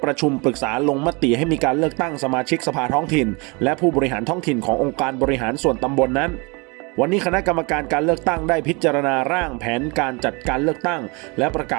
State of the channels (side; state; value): left; quieter; 29.0 dB